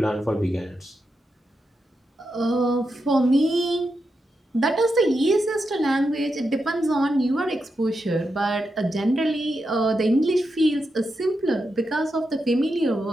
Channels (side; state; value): both; normal; correlation 0.86